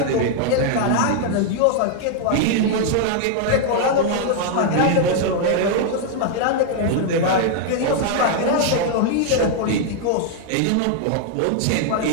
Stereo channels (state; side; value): different; both; correlation 0.00